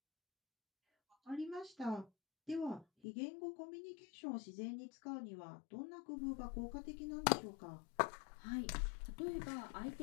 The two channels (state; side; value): drops out; right; at 2.9 s